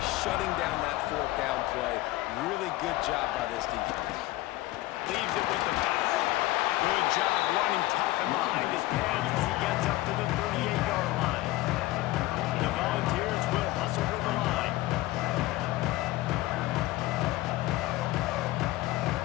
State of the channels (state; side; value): quieter; right; 17.7 dB